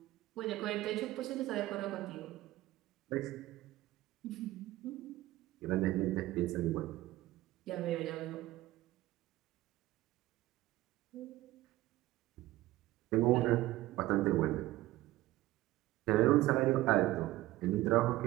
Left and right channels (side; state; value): left; quieter; 16.9 dB